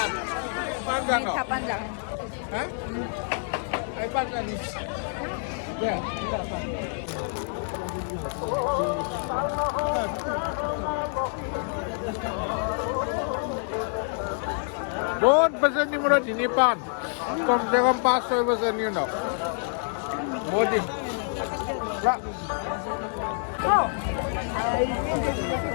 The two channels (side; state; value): right; silent; 60 dB below the other